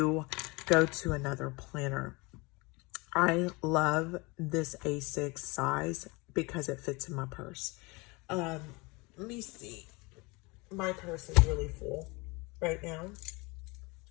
go to another planner. I love this A6 size because it fits in my purse. Let me see. My purse is really full right now.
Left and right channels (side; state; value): right; quieter; 26.1 dB